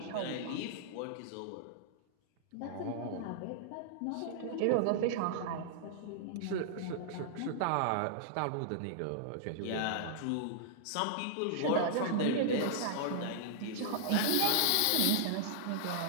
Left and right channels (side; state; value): both; different; correlation -0.01